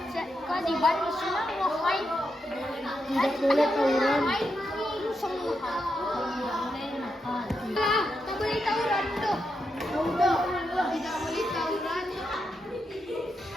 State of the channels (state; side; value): normal; both; correlation 0.84